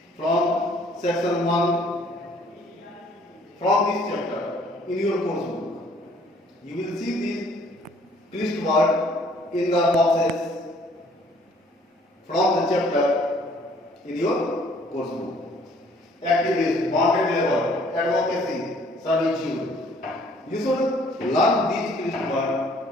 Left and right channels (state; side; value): normal; both; correlation 0.59